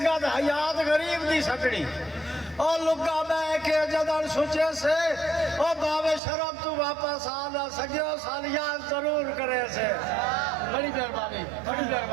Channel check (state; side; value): drops out; left; at 6.2 s